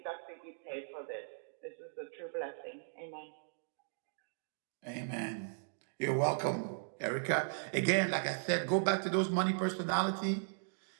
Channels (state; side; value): silent; left; digital silence